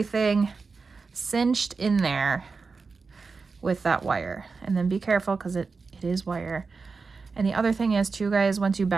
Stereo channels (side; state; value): left; quieter; 4.6 dB